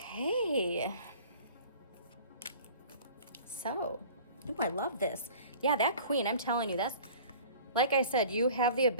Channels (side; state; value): both; inverted; correlation -0.45